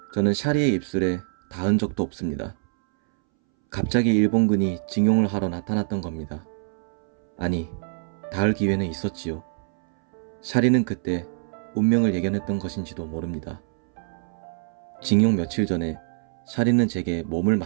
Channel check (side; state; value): left; silent; 62 dB below the other